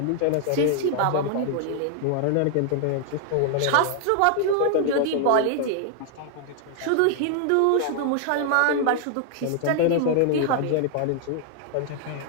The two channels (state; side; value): different; both; correlation 0.00